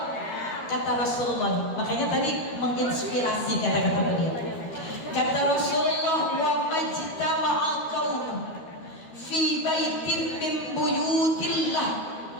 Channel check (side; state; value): right; late; 13 ms